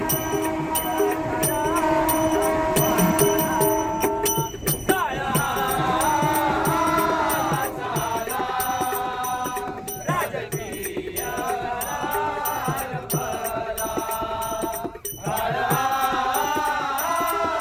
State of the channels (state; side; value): identical; both; correlation 1.00